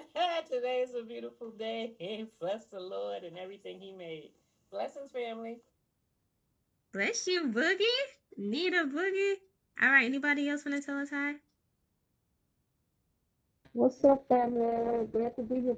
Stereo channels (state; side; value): identical; both; correlation 1.00